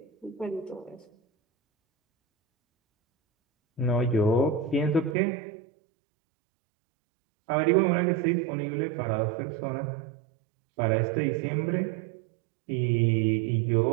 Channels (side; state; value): left; drops out; at 5.2 s